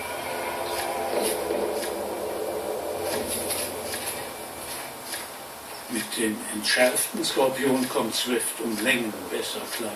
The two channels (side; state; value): both; identical; correlation 1.00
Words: Mit dem entschärften Skorpion kommt Swift um Längen besser klar.